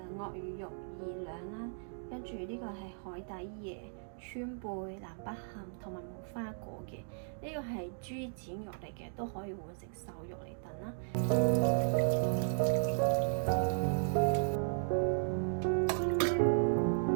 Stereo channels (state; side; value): silent; left; digital silence